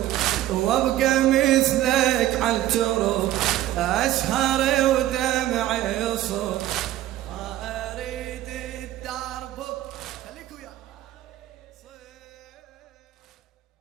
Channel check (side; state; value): left; quieter; 13.9 dB